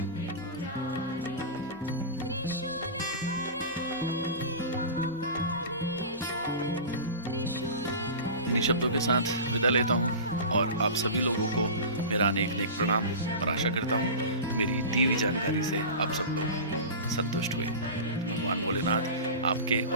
इन्हीं शब्दों के साथ विदा लेता हूँ और आप सभी लोगों को मेरा अनेक अनेक प्रणाम और आशा करता हूँ मेरी दी हुई जानकारी से आप सब लोग संतुष्ट हुए। भगवान भोलेनाथ आपके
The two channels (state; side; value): inverted; both; correlation -0.30